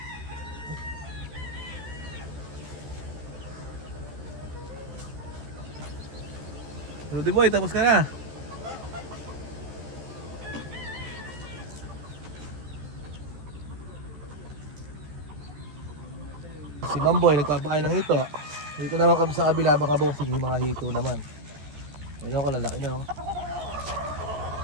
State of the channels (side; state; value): left; late; 14 ms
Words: Rudy Boy, tapos ka na. Si Mamboy nagpapakain ng hito. Dito naman kami sa kabila, baka bossing yung mga hito naman. Ayun ko, lalaki daw.